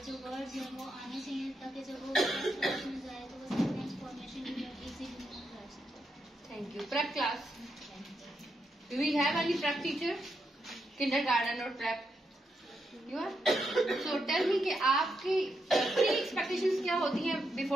जो वर्ड्स हैं वो आने चाहिए, ताकि जब वो नेक्स्ट क्लास में जाए तो वो सेंटेंस फॉर्मेशन इजीली कर सके। Thank you. Prep class, do we have any prep teacher? Kindergarten और prep you are? So tell me कि आपकी प्री एक्सपेक्टेशंस क्या होती हैं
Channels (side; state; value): both; normal; correlation 0.82